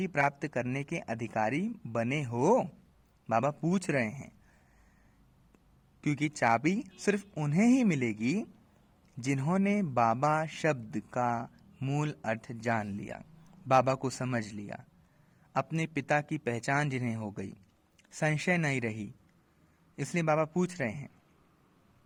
प्राप्त करने के अधिकारी बने हो? बाबा पूछ रहे हैं, क्योंकि चाबी सिर्फ उन्हें ही मिलेगी जिन्होंने बाबा शब्द का मूल अर्थ जान लिया, बाबा को समझ लिया, अपने पिता की पहचान जिन्हें हो गई, संशय नहीं रही। इसलिए बाबा पूछ रहे हैं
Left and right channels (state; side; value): identical; both; correlation 1.00